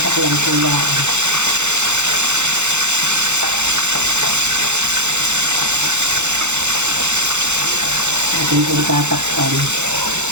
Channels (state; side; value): late; left; 0.83 ms